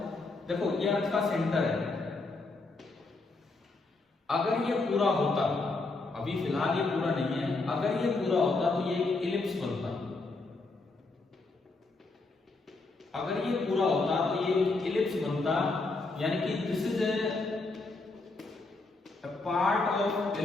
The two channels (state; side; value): quieter; right; 3.5 dB